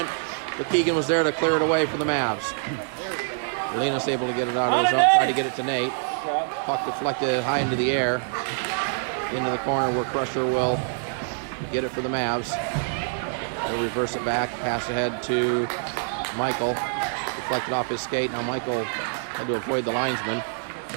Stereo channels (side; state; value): left; silent; digital silence